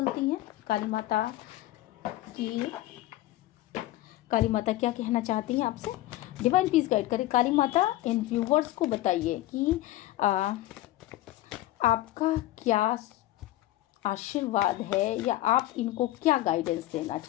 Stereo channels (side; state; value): right; quieter; 15.6 dB